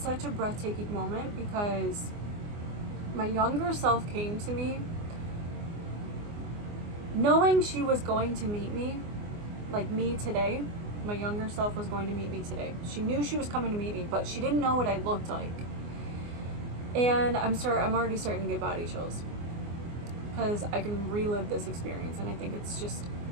a breathtaking moment because my younger self came to me knowing she was going to meet me, like me today. My younger self was going to meet me today. She knew she was coming to meet me, but she didn't know what I looked like. And I'm already starting to get body chills because I can relive this experience, and I think it's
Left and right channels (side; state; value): left; late; 24 ms